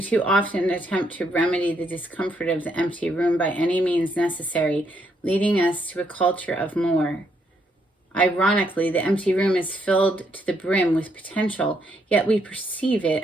too often attempt to remedy the discomfort of the empty room by any means necessary, leading us to a culture of more. Ironically, the empty room is filled to the brim with potential, yet we perceive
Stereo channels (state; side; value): normal; both; correlation 0.74